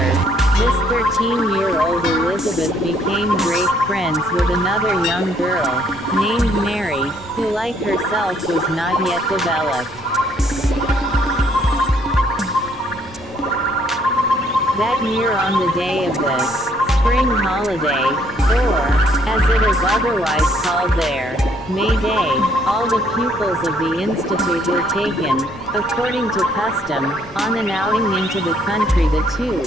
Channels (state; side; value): normal; both; correlation 0.66